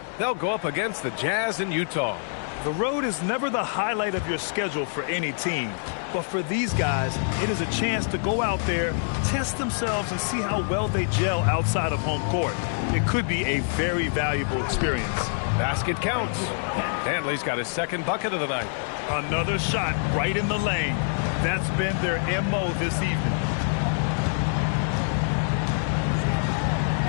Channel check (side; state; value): right; silent; 61 dB below the other